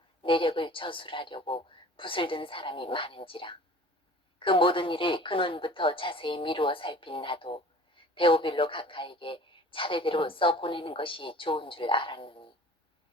내력을 저술하려고 붓을 든 사람이 많은지라. 그 모든 일을 근원부터 자세히 미루어 살핀 나도 데오빌로 각하에게 차례대로 써보내는 것이 좋은 줄 알았느니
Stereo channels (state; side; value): normal; both; correlation 0.45